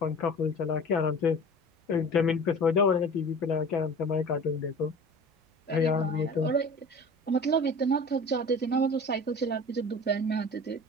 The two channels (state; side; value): normal; both; correlation 0.40